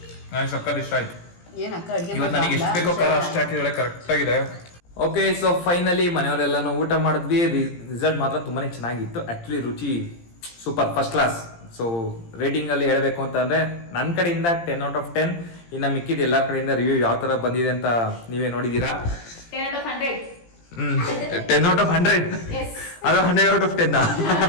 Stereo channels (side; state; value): right; late; 17 ms